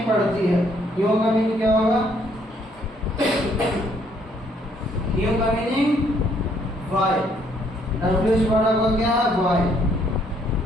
पढ़ती है? क्यों का मीनिंग क्या होगा? क्यों का मीनिंग वाई। WH वर्ड आपका क्या है?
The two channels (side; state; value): both; normal; correlation 0.67